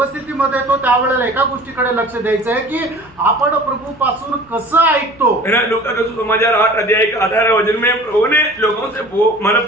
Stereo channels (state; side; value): noise; left; hum, 28 dB below the sound